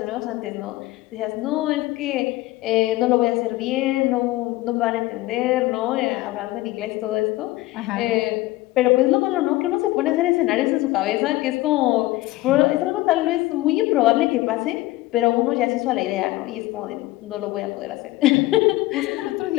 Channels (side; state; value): right; quieter; 18.1 dB